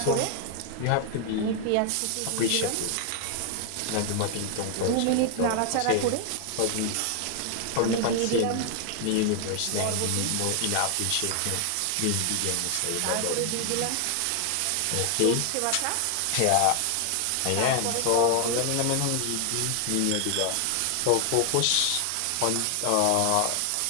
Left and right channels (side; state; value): both; different; correlation 0.00